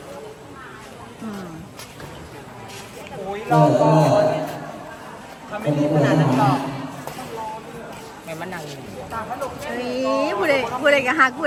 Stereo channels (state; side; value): identical; both; correlation 1.00